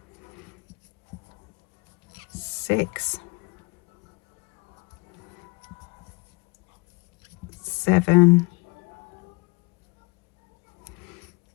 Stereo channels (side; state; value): right; quieter; 27.7 dB